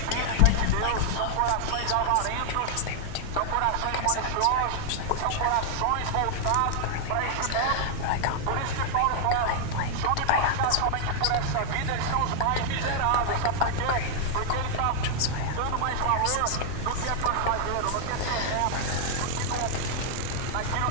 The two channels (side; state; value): both; different; correlation 0.00